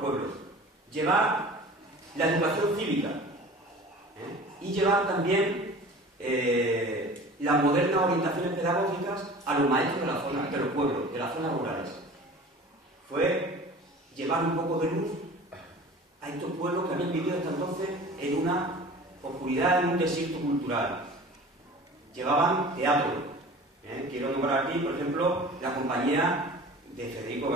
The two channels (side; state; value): both; normal; correlation 0.41